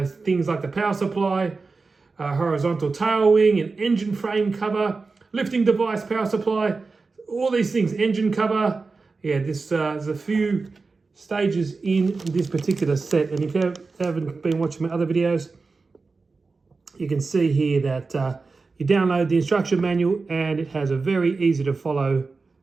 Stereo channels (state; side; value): quieter; left; 4.1 dB